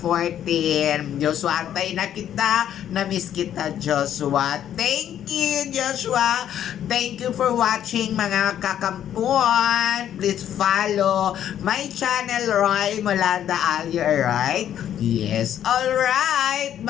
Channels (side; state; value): right; quieter; 10.4 dB